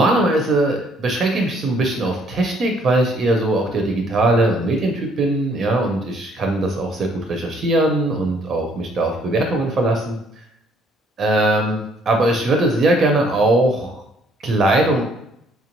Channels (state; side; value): normal; both; correlation 0.64